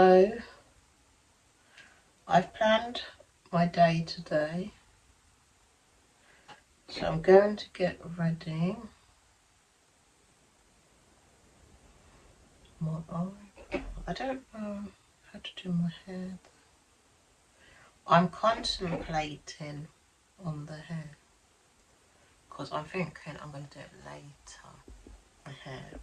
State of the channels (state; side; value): identical; both; correlation 1.00